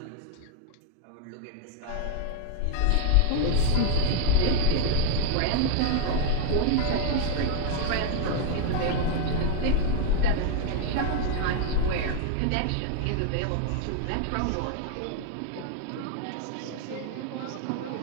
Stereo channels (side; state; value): both; different; correlation 0.00